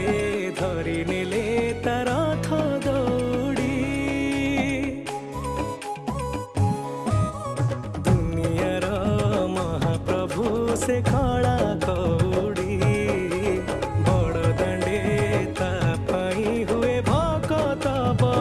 धरी नेले तार रथ दौड़ी। दुनियार महाप्रभु से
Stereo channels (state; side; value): identical; both; correlation 1.00